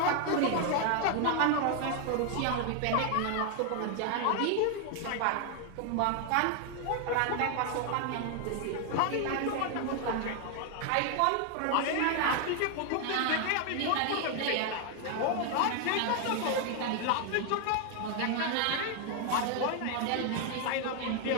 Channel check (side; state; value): both; different; correlation 0.00